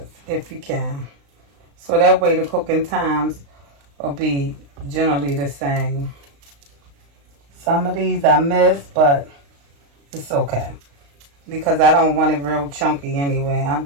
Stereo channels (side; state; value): left; late; 35 ms